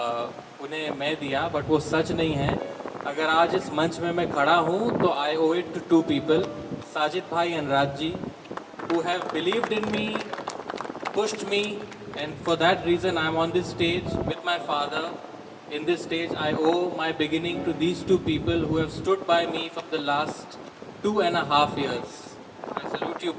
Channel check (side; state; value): both; identical; correlation 1.00